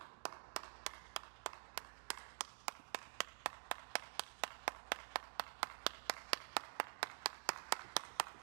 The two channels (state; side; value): silent; left; digital silence